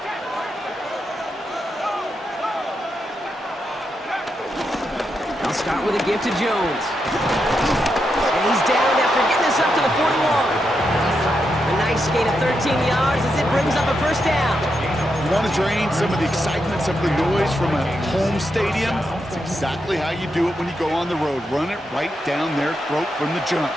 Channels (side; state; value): both; normal; correlation 0.84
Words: to give to Jones. And he's down after getting this up to the 41. A nice gain of 13 yards as it brings up a first down. You want to drain some of the excitement, some of the noise from a home stadium? It's exactly how you do it when you go on the road. Run it right down their throat from the jump.